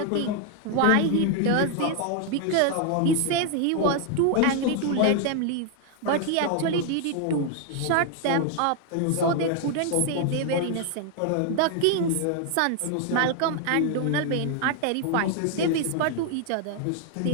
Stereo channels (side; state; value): both; different; correlation 0.00